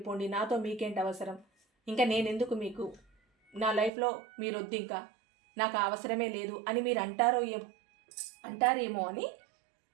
నాతో మీకేంటి అవసరం, ఇంకా నేనెందుకు మీకు, నా లైఫ్లో మీరు వద్దు, ఇంకా నాకు అవసరమే లేదు అని మీరు అంటారేమో అని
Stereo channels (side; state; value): left; drops out; at 3.9 s